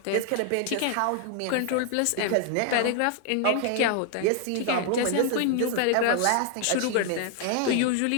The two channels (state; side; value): different; both; correlation 0.00